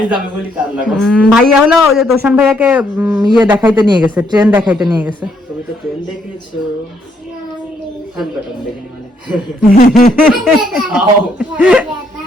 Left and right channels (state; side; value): normal; both; correlation 0.72